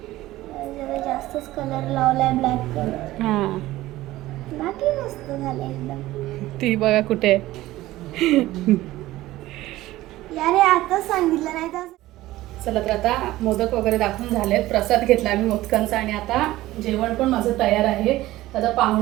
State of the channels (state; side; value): quieter; left; 16.6 dB